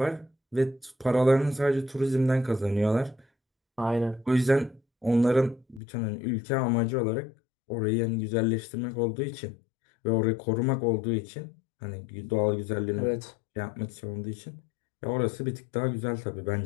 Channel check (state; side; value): drops out; right; at 5.8 s